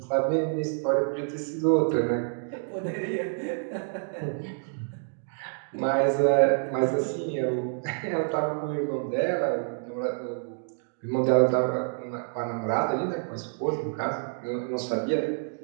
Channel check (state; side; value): silent; left; digital silence